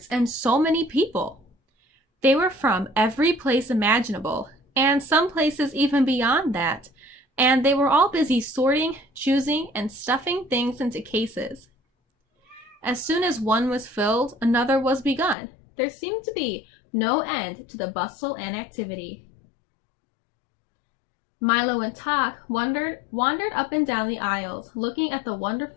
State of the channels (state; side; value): drops out; right; at 15.4 s